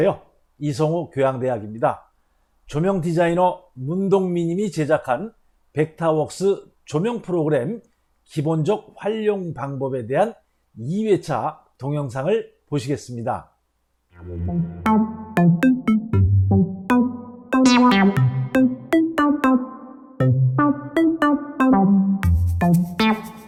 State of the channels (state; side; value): identical; both; correlation 1.00